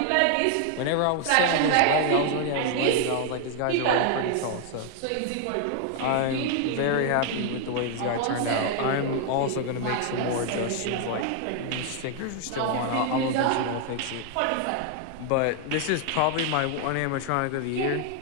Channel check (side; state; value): both; different; correlation 0.00